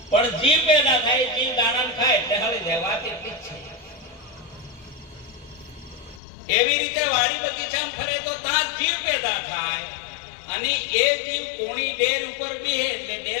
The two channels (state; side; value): drops out; right; at 6.2 s